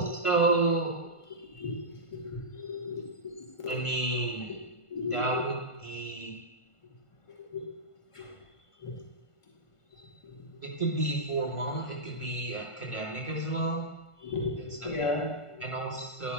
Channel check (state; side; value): late; right; 1.5 ms